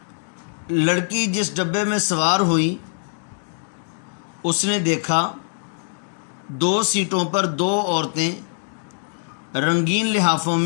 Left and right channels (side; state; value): right; silent; digital silence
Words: लड़की जिस डब्बे में सवार हुई उसने देखा 2 सीटों पर 2 औरतें रंगीन लिहाफों